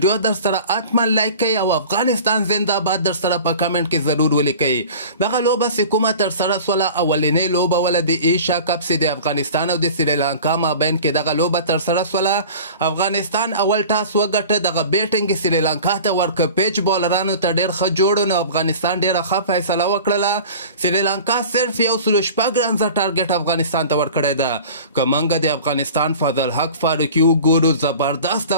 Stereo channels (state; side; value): inverted; both; correlation -0.39